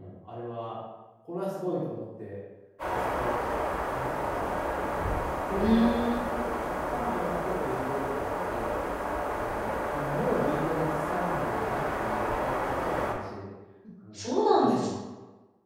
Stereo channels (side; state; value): both; identical; correlation 1.00